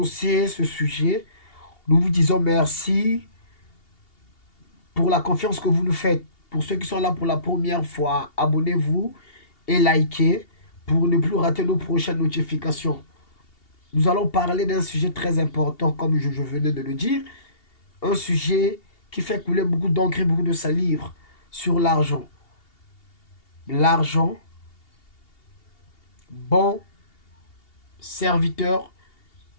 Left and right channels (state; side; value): late; right; 2.8 ms